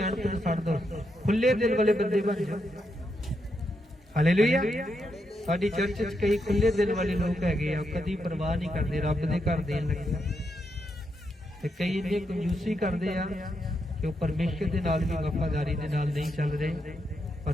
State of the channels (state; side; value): normal; both; correlation 0.82